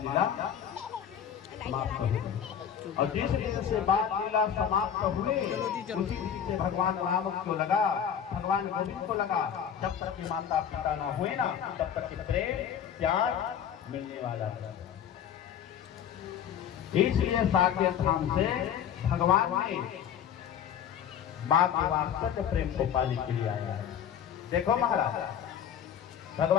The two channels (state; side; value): quieter; right; 8.8 dB